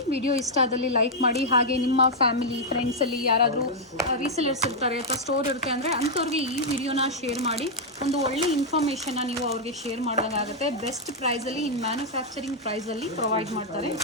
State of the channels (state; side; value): normal; both; correlation -0.04